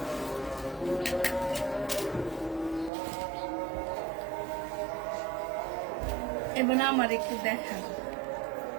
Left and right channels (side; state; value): left; drops out; at 2.9 s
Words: এবার আমার একটু দেখা।